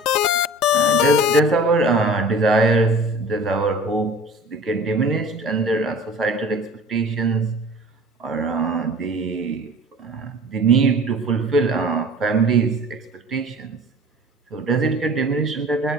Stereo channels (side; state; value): both; normal; correlation 0.43